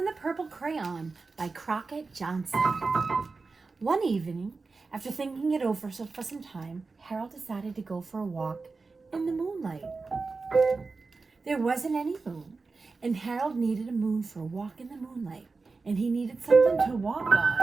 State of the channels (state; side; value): quieter; left; 4.1 dB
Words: the Purple Crayon by Crockett Johnson. One evening, after thinking it over for some time, Harold decided to go for a walk in the moonlight. There wasn't any moon, and Harold needed a moon for a walk in the moonlight, and he needed something to walk